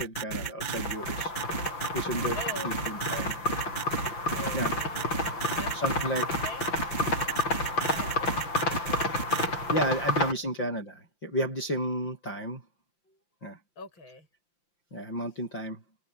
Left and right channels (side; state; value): right; late; 5.8 ms